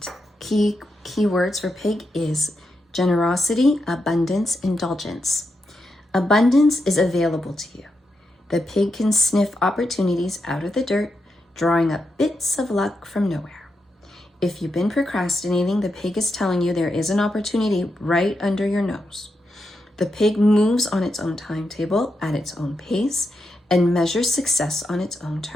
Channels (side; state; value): both; normal; correlation 0.85